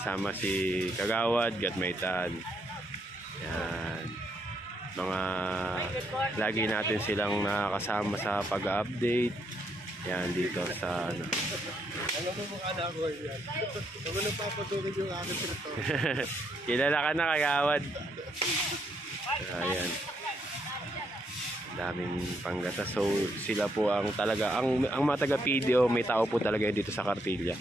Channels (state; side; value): normal; both; correlation 0.75